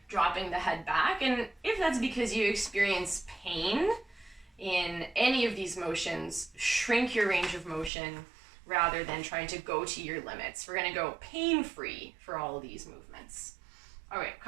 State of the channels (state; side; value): drops out; left; at 7.9 s